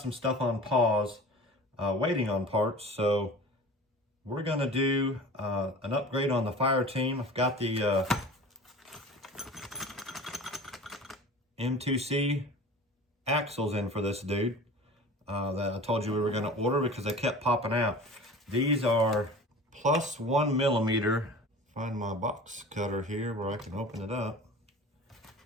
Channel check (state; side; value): normal; both; correlation 0.38